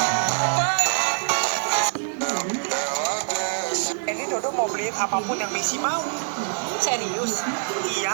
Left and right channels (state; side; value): silent; left; digital silence